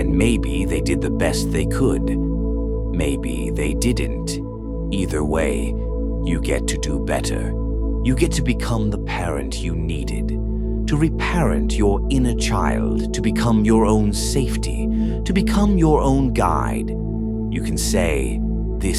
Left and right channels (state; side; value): identical; both; correlation 1.00